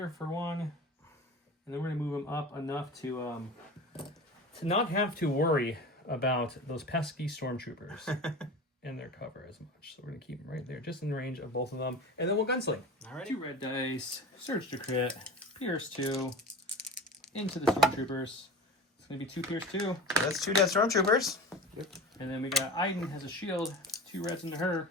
for one, and then we're gonna move him up enough to not have to worry about those pesky stormtroopers in their cover as much. So we're gonna keep them right there, just in range of both of them, and then we'll gunsling. All right. 2 red dice, surge to crit, pierce 2, into the stormtroopers. It's gonna be 2 pierce 2. That's 2 dead stormtroopers. And then we got Iden has a shield, 2 reds into her.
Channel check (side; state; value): both; normal; correlation 0.32